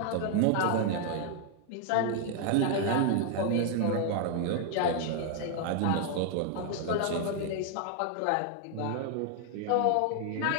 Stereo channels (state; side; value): different; both; correlation 0.00